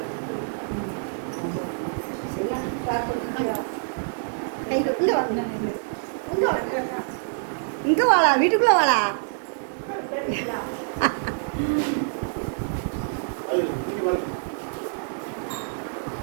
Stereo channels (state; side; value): silent; left; digital silence